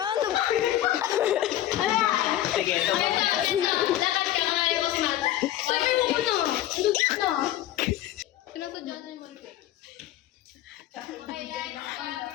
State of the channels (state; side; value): quieter; right; 13.4 dB